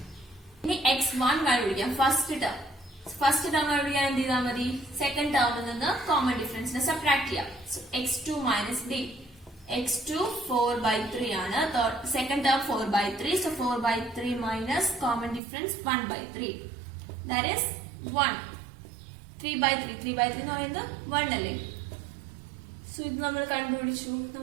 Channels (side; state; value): left; drops out; at 15.4 s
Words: ഇനി x1 കണ്ടുപിടിക്കാം. ഫസ്റ്റ് ടേം കണ്ടുപിടിക്കാൻ എന്ത് ചെയ്താൽ മതി? സെക്കൻഡ് ടേമിൽ നിന്ന് കോമൺ ഡിഫറൻസിനെ സബ്ട്രാക്ട് ചെയ്യാം. So x2 minus d. x2 4/3 ആണ്. Second term 4/3. So 4/3 minus common difference 1/3, that is 1. 3/3 എന്ന് പറയുന്നത് 1 അല്ലേ. സോ ഇത് നമ്മൾ കണ്ടുപിടിച്ചു.